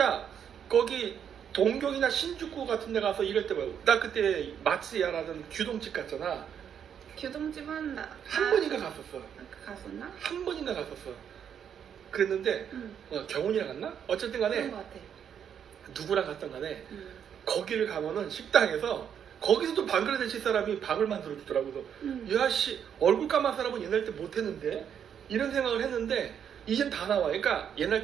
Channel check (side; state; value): left; quieter; 8.4 dB